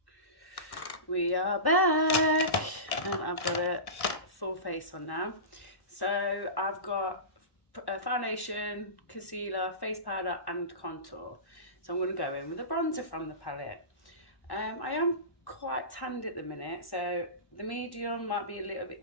We are back and I've got a full face on now. So I've got a foundation, concealer, face powder and contour. So I'm going to go in with a bronzer from the palette. I am quite tanned at the minute, so the medium might be a little bit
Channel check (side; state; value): right; late; 1.1 ms